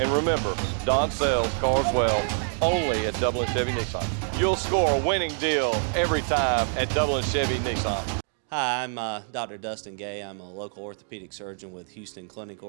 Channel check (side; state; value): left; silent; 61 dB below the other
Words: And remember, Don sells cars well only at Dublin Chevy Nissan. You'll score a winning deal every time at Dublin Chevy Nissan. Hi, I'm Dr. Dustin Gay. I'm a local orthopedic surgeon with Houston Clinic